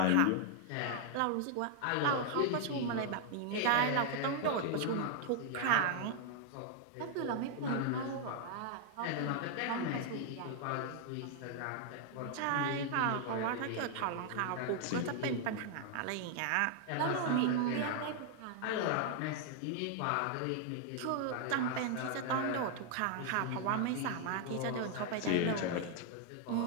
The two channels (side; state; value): both; different; correlation 0.00